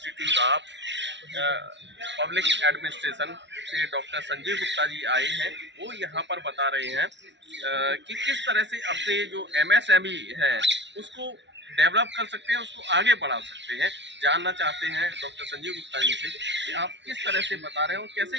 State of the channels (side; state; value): left; late; 0.52 ms